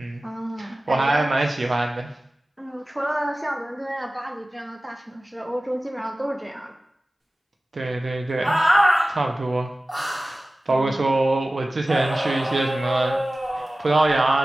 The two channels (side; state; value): both; normal; correlation 0.96